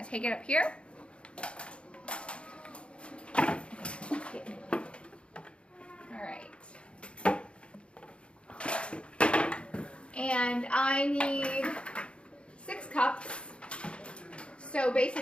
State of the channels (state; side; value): late; right; 0.058 ms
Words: to take it up here. Alright. And I need 6 cups. So